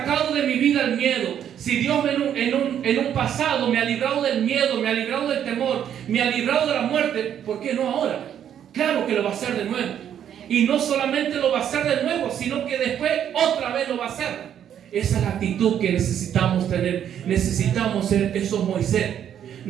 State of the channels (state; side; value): quieter; left; 9.6 dB